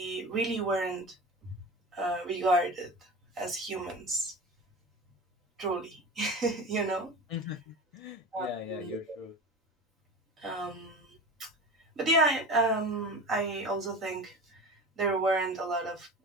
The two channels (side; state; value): both; normal; correlation 0.31